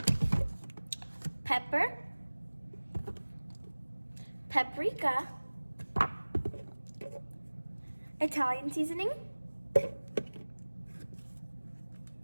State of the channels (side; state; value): both; inverted; correlation -1.00